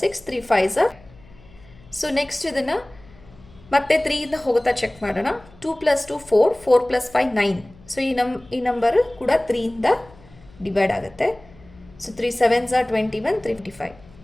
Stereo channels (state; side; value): noise; left; hum, 25 dB below the sound